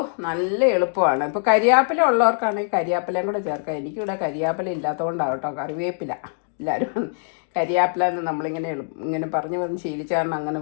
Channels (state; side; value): silent; right; digital silence